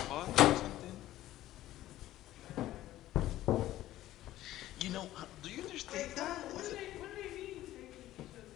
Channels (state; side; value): quieter; right; 14.6 dB